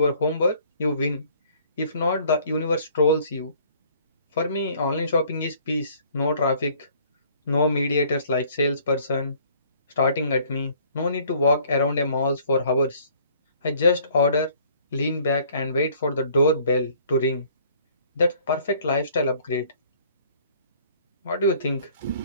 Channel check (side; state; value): both; inverted; correlation -0.57